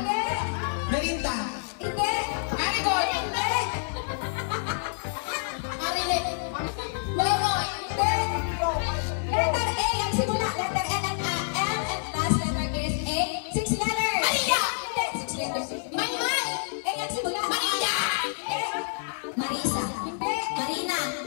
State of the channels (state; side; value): silent; right; digital silence